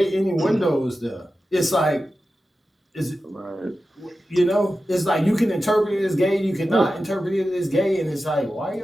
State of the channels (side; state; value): both; normal; correlation 0.93